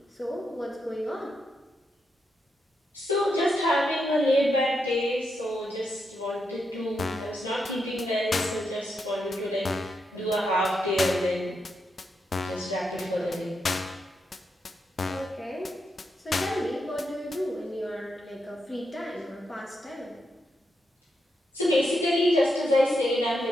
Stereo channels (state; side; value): normal; both; correlation 0.83